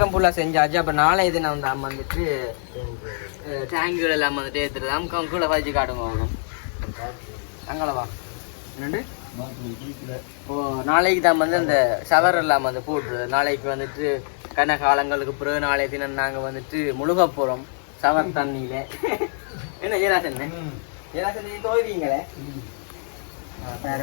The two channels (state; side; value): silent; right; digital silence